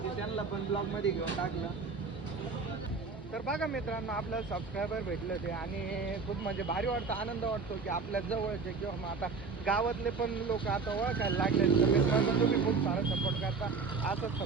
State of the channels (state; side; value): quieter; left; 4.7 dB